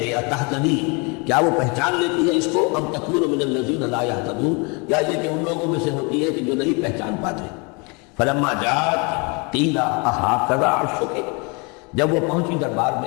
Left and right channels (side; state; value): right; quieter; 31.2 dB